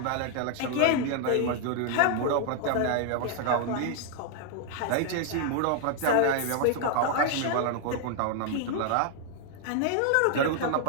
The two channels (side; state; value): both; different; correlation 0.00